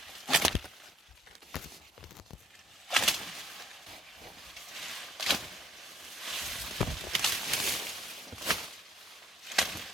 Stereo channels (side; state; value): both; normal; correlation 0.64